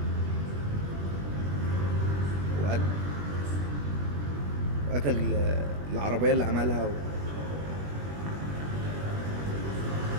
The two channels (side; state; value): left; late; 21 ms